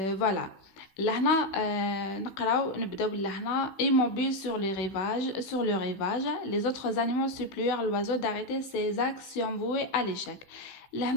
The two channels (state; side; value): late; right; 16 ms